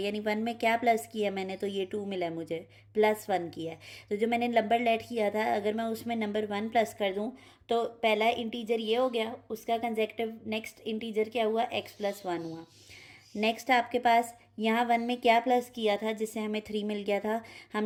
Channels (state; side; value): identical; both; correlation 1.00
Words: यानी 1 में क्या प्लस किया मैंने, तो ये 2 मिला है मुझे, +1 किया है। तो जो मैंने नंबर लेट किया था अगर मैं उसमें नंबर 1 प्लस कर दूँ तो पहला इंटीजर ये हो गया, उसका कंसेक्यूटिव नेक्स्ट इंटीजर क्या हुआ, x+1 हुआ। नेक्स्ट आपके पास यहाँ 1 में क्या प्लस किया था जिससे हमें 3 मिल गया था,